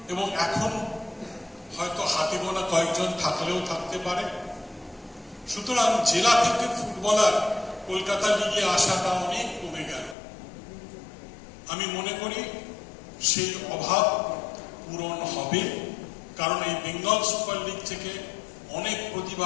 এবং এখন হয়তো হাতে গোনা কয়েকজন থাকলেও থাকতে পারে। সুতরাং জেলা থেকে ফুটবলার কলকাতা লিগে আসাটা অনেক কমে গেল। আমি মনে করি সেই অভাব পূরণ হবে, কারণ এই বেঙ্গল সুপার লিগ থেকে অনেক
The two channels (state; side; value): drops out; right; at 10.2 s